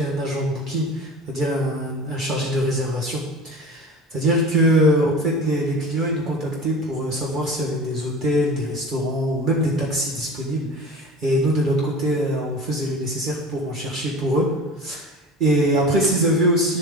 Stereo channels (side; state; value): both; normal; correlation 0.36